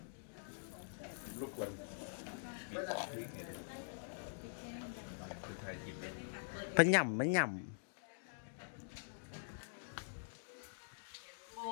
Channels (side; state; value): right; silent; digital silence